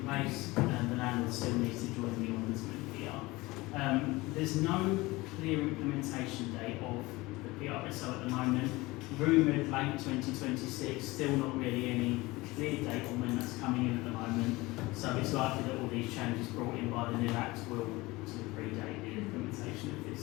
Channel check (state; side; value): quieter; right; 21.3 dB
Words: place, the landlord still needs to join the ombudsman here. There's no clear implementation date of the PRSO at the moment. Rumoured late 2026, still not really any clear date on when that's coming in at the moment. So it's likely that all these changes brought in by the new Act will sort of predate the implementation of